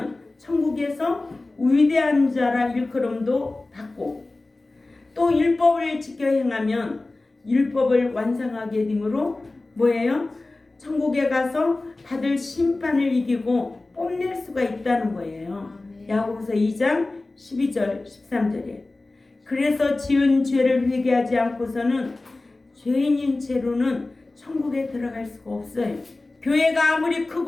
천국에서 위대한 자라 일컬음도 받고, 또 율법을 지켜 행하면 율법을 완성하게 되므로 뭐예요? 천국에 가서 받을 심판을 이기고 뽐낼 수가 있다는 거예요. 야고보서 2장 12절 13절에 그래서 지은 죄를 회개하지 않고서는 죄인인 채로는 천국에 들어갈 수가 없어요. 교회가 아무리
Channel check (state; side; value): quieter; right; 3.1 dB